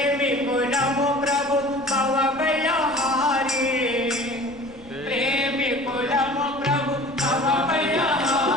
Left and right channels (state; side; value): noise; left; rumble, 24 dB below the sound